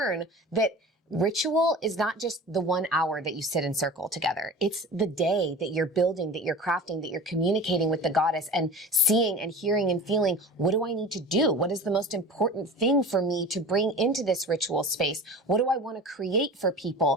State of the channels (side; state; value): both; normal; correlation 0.36